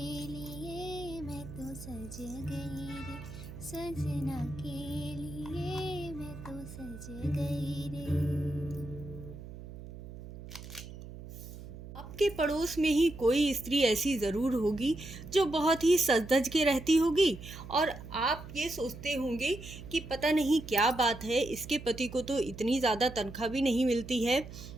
लिए मैं तो सज गई रे सजना के लिए मैं तो सज गई रे। आपके पड़ोस में ही कोई स्त्री ऐसी ज़रूर होगी जो बहुत ही सज धज के रहती होगी और आप ये सोचते होंगे कि पता नहीं क्या बात है, इसके पति को तो इतनी ज़्यादा तनख्वाह भी नहीं मिलती है,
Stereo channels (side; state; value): right; noise; hum, 13 dB below the sound